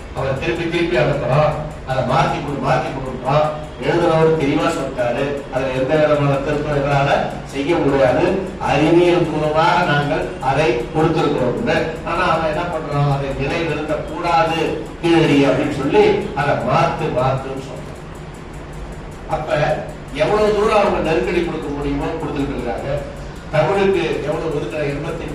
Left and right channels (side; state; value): both; identical; correlation 1.00